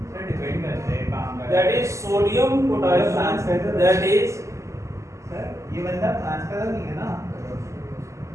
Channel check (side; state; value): left; late; 0.14 ms